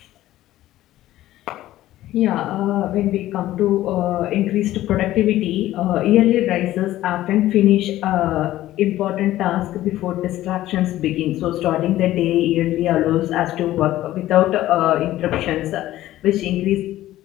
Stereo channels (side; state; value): right; quieter; 14.7 dB